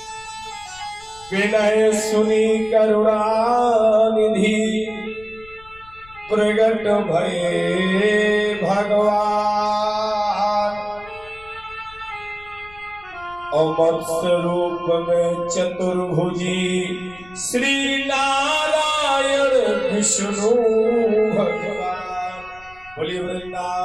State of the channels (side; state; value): left; noise; rumble, 24 dB below the sound